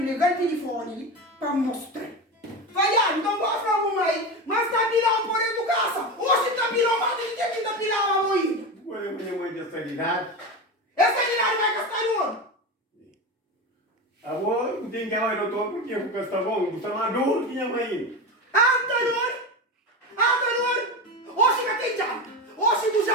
o telefone para mostrar. Falhar, não gosto da mamãe, mas tá pirando por educação. Hoje tá pirando, mas ele tem que tá pirando a mãe. Olha, minha mãe dessa idade. Essa idade vai gastar no ano. Agora, não tem que ir ao doutor porque eu vou gastar bom. Você é maduro, minha mãe. Anterior. Hoje que tem já. Hoje tu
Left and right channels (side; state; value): both; normal; correlation 0.21